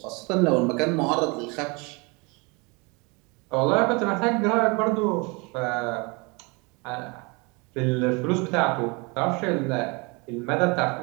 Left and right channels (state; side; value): quieter; left; 29.0 dB